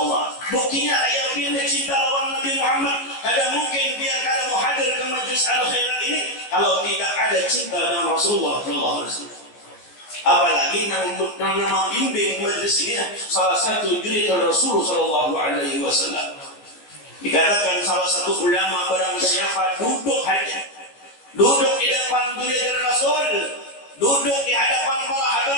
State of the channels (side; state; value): right; late; 14 ms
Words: Buktinya ayat yang cinta lawan Nabi Muhammad. Ada mungkin biar kalian mau hadir ke majlis al-khairat ini kalau tidak ada cinta dengan Rasulullah SAW. Apalagi nama bimbing majlis ini salah satu juritan Rasulullah SAW. Dikatakan salah satu ulama barang siapa duduk di depan juritan Rasul, duduk di hadapan para